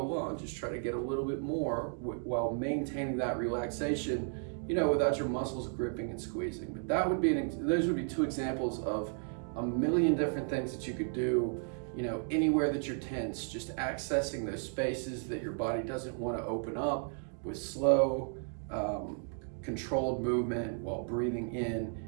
just try to get a little bit more while maintaining that relaxation, you know, without your muscles gripping and squeezing. But that would be those would be two examples of a million different things that you could do, you know, anywhere that you're tense, just accessing those spaces that your body doesn't want to open up with slow, controlled movement while breathing in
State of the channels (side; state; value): left; silent; 55 dB below the other